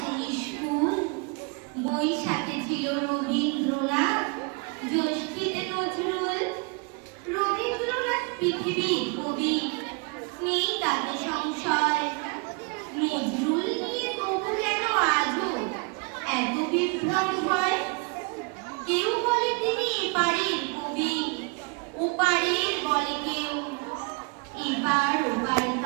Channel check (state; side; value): quieter; left; 31.8 dB